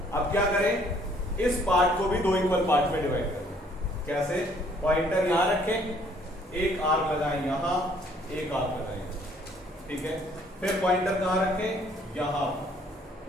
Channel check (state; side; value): normal; both; correlation 0.62